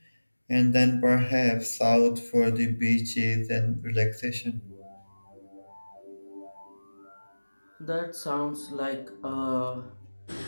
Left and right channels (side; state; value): both; inverted; correlation -1.00